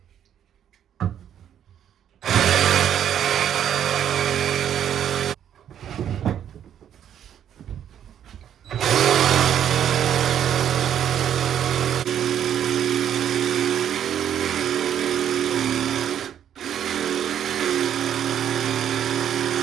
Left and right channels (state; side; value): quieter; left; 9.7 dB